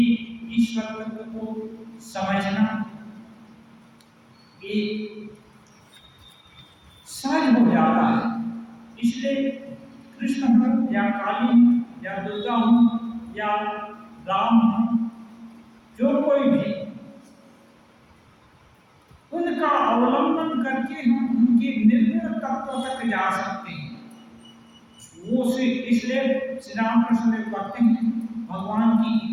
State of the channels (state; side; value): identical; both; correlation 1.00